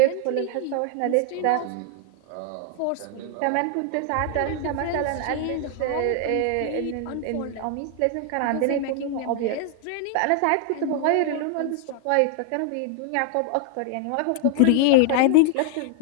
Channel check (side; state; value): both; different; correlation 0.00